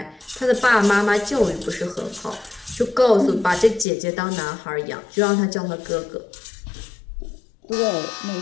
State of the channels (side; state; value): right; drops out; at 3.9 s